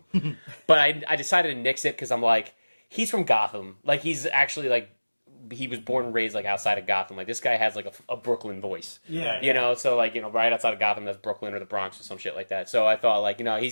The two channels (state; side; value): inverted; both; correlation -1.00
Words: but I decided to nix it because I'm like, he's from Gotham. Like he's actually like, he was born and raised like outside of Gotham. Like this guy has like a Brooklyn voice. Yeah. You know, so like, you know, right outside of Gotham, that's Brooklyn or the Bronx or some shit like that. So I thought like, you know,